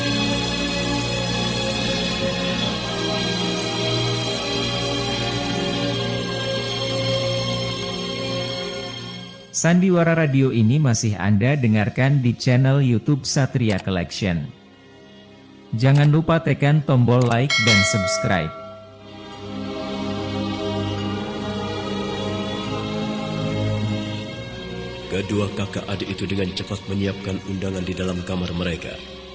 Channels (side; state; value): both; identical; correlation 1.00